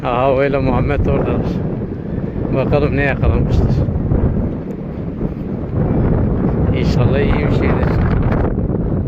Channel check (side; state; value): both; identical; correlation 1.00